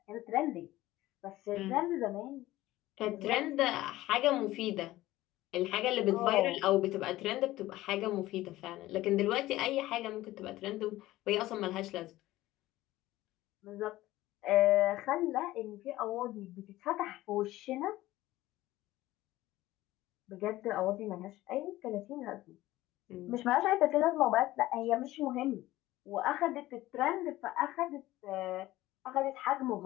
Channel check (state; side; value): quieter; right; 16.6 dB